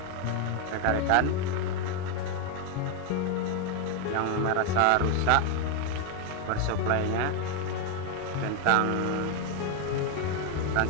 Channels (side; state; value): both; different; correlation 0.01